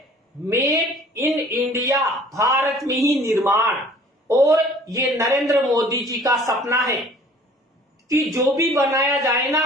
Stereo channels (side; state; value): both; normal; correlation 0.52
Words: मेक इन इंडिया, भारत में ही निर्माण। और ये नरेंद्र मोदी जी का सपना है कि जो भी बनाया जाए ना,